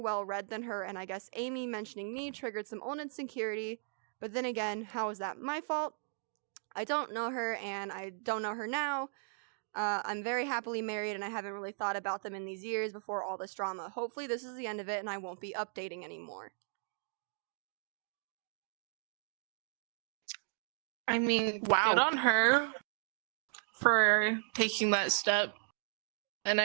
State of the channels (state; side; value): silent; left; digital silence